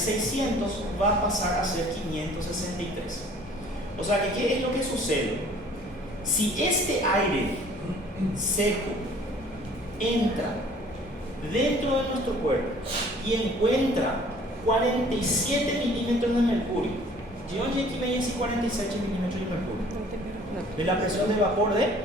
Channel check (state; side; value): normal; both; correlation 0.53